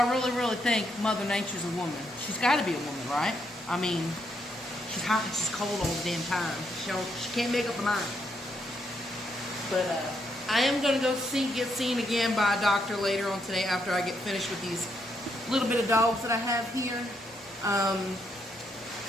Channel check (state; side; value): normal; both; correlation 0.77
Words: I really think Mother Nature's a woman. She's got to be a woman, right? I mean, she's hot and she's cold all the damn time. She can't make up her mind. But, I am going to go get seen again by a doctor later on today after I get finished with these little bit of dogs that I have here.